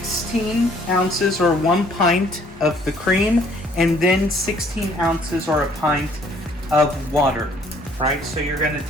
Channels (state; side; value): normal; both; correlation 0.61